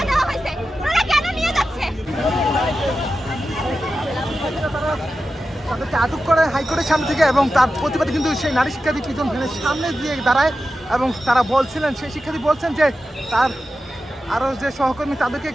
দেওয়া হয়েছে ওনারা কেন নিয়ে যাচ্ছে তাদেরকে আটক করে হাইকোর্টের সামনে থেকে এবং তার প্রতিবাদে কিন্তু সেই নারী শিক্ষার্থী পিজন ভ্যানের সামনে দিয়ে দাঁড়ায় এবং তারা বলছিলেন সেই শিক্ষার্থী বলছেন যে তার আরও যে সহকর্মী তাদেরকে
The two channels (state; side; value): normal; both; correlation 0.92